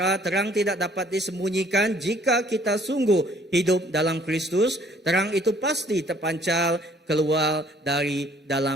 terang tidak dapat disembunyikan jika kita sungguh hidup dalam Kristus. Terang itu pasti terpancar keluar dari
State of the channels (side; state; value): both; normal; correlation 0.60